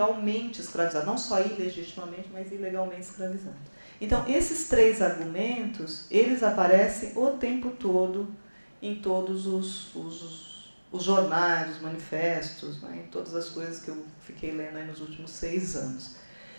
escravizados, não só ilegitimamente, mas ilegalmente escravizados. Então, esses três argumentos, eles aparecem o tempo todo em todos os jornais, os manifestos, né, em todas as coisas que eu fiquei lendo aí nos últimos 6 anos.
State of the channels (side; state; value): both; inverted; correlation -1.00